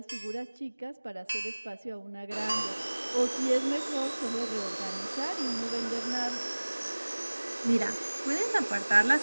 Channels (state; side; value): inverted; both; correlation -1.00